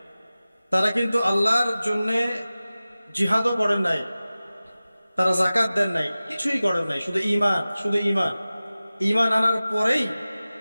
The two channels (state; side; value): inverted; both; correlation -0.97